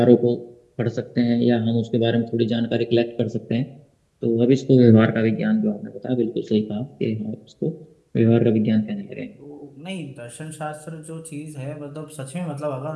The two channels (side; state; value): both; identical; correlation 1.00